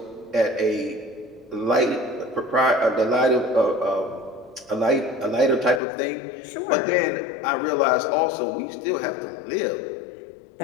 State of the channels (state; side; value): drops out; right; at 5.8 s